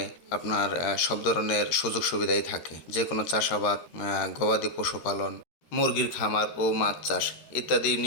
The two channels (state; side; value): late; right; 13 ms